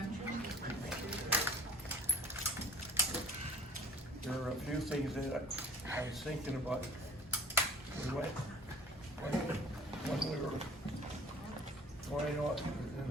There are a few things that I was thinking about. We went, when we were going on in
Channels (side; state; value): both; normal; correlation 0.48